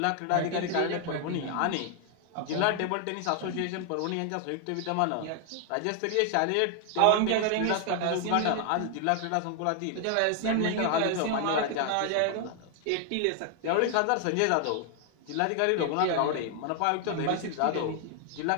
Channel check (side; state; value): both; different; correlation 0.00